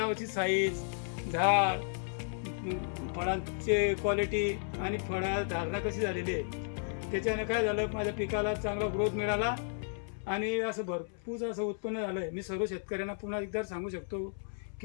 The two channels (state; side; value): silent; right; 55 dB below the other